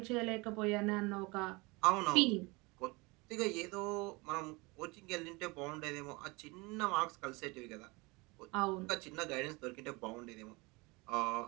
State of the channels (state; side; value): quieter; left; 25.5 dB